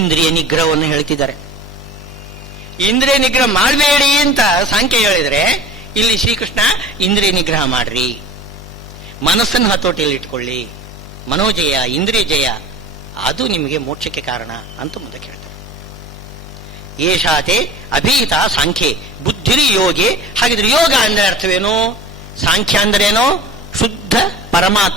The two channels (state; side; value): normal; both; correlation 0.40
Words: ನಿಗ್ರಹವನ್ನು ಹೇಳ್ತಿದ್ದಾರೆ. ಇಂದ್ರಿಯ ನಿಗ್ರಹ ಮಾಡಬೇಡಿ ಅಂತ ಸಾಂಖ್ಯ ಹೇಳಿದರೆ, ಇಲ್ಲಿ ಶ್ರೀಕೃಷ್ಣ ಇಂದ್ರಿಯ ನಿಗ್ರಹ ಮಾಡ್ರಿ. ಮನಸ್ಸನ್ನು ಹತೋಟಿಯಲ್ಲಿ ಇಟ್ಕೊಳ್ಳಿ. ಮನೋಜಯ, ಇಂದ್ರಿಯ ಜಯ, ಅದು ನಿಮಗೆ ಮೋಕ್ಷಕ್ಕೆ ಕಾರಣ ಅಂತ ಮುಂದೆ ಹೇಳ್ತಾರೆ. ಏಷಾತೆ ಅಭೀತ ಸಾಂಖ್ಯೆ ಬುದ್ಧಿರಿ ಯೋಗಿ. ಹಾಗಿದ್ರೆ ಯೋಗ ಅಂದ್ರೆ ಅರ್ಥವೇನು? ಸಾಂಖ್ಯ ಅಂದ್ರೇನು? ಶುದ್ಧ